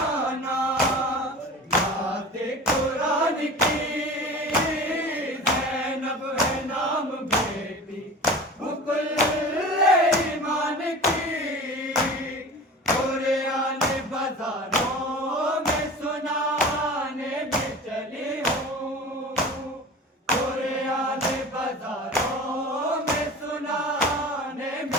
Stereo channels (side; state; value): both; normal; correlation 0.37